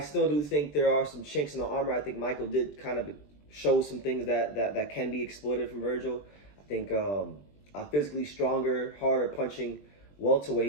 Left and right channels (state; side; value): late; right; 20 ms